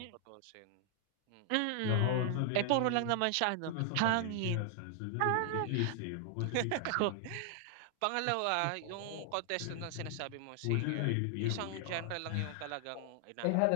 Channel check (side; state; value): both; different; correlation 0.00